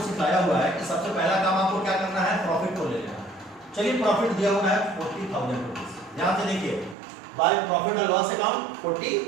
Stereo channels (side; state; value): left; drops out; at 7.0 s